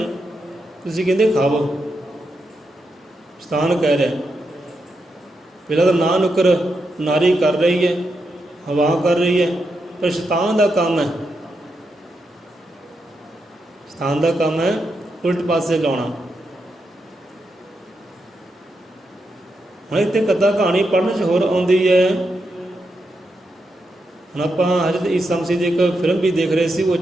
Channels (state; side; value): normal; both; correlation 0.84